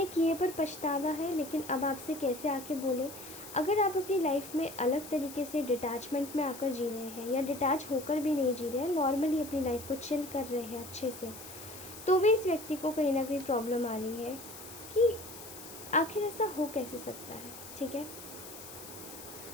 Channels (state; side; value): noise; left; hiss, 14 dB below the sound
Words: किए पर पछतावा है, लेकिन अब आपसे कैसे आके बोले। अगर आप अपनी लाइफ में अलग तरीके से डिटैचमेंट में आकर जी रहे हैं, या डिटैच होकर भी नहीं जी रहे हैं, नॉर्मली अपनी लाइफ को चिल कर रहे हैं अच्छे से, तो भी इस व्यक्ति को कहीं ना कहीं प्रॉब्लम आ रही है कि आखिर ऐसा हो कैसे सकता है। ठीक है,